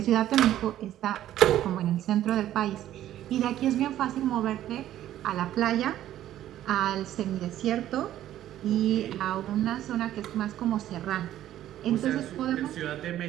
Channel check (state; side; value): quieter; left; 12.6 dB